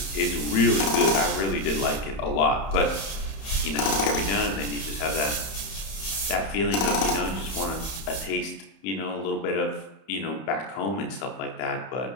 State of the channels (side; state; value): right; late; 31 ms